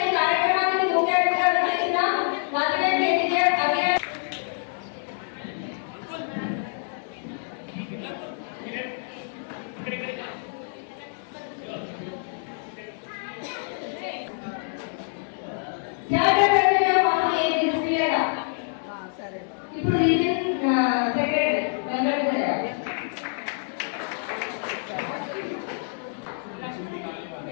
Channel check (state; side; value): silent; right; 61 dB below the other